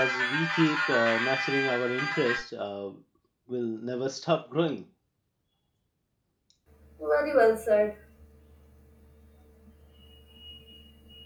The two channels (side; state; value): both; identical; correlation 1.00